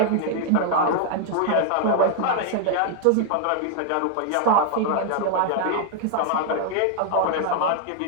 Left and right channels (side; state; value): both; different; correlation 0.00